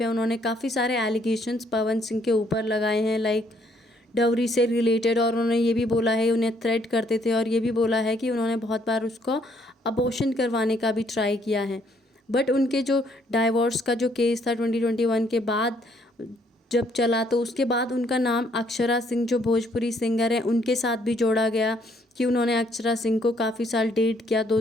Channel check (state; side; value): normal; both; correlation 0.67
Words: है उन्होंने काफ़ी सारे एलिगेशंस पवन सिंह के ऊपर लगाए हैं, लाइक डवरी से रिलेटेड। और उन्होंने ये भी बोला है, उन्हें थ्रेट करते थे और ये भी बोला है कि उन्होंने बहुत बार उसको अबॉर्शन करवाने का भी ट्राई किया है। बट उनके जो डाइवोर्स का जो केस था 2021 के बाद जब चला तो उसके बाद उनका नाम अक्षरा सिंह जो भोजपुरी सिंगर हैं उनके साथ भी जोड़ा गया कि उन्होंने अक्षरा सिंह को काफ़ी साल डेट किया,